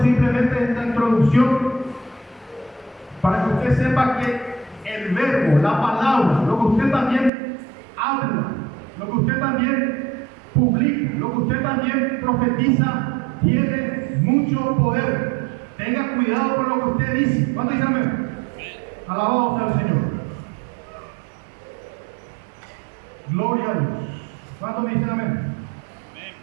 simplemente esta introducción para que usted sepa que el verbo, la palabra, lo que usted también habla, lo que usted también publica, lo que usted también profetiza, tiene mucho poder. Tenga cuidado con lo que usted dice. ¿Cuánto dicen amén? Alabado sea el Señor. Gloria a Dios. ¿Cuánto me dicen amén?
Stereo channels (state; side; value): drops out; left; at 7.3 s